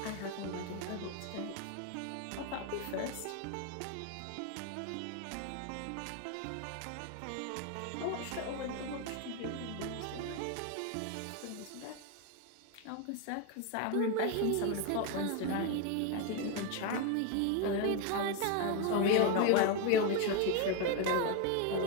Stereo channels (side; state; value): both; different; correlation 0.02